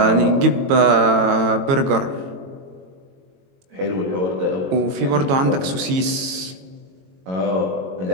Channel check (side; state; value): left; late; 22 ms